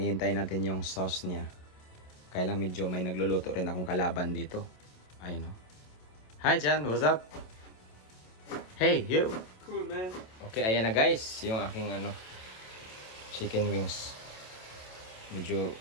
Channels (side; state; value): right; late; 27 ms